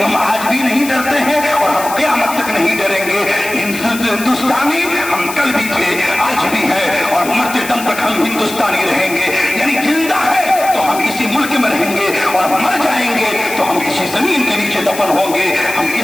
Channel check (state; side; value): noise; left; hiss, 11 dB below the sound